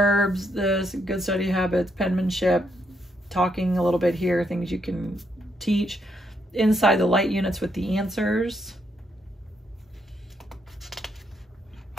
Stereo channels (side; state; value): both; normal; correlation 0.77